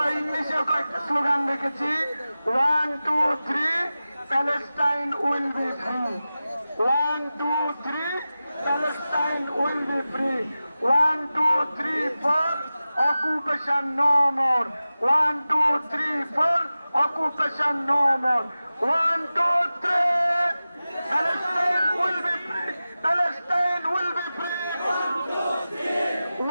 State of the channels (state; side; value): inverted; both; correlation -0.95